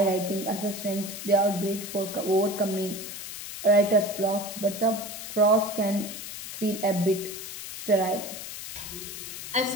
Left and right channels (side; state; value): left; noise; hiss, 9 dB below the sound